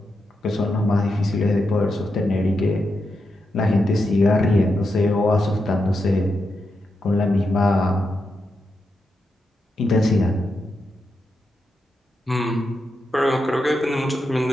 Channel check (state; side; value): normal; both; correlation 0.85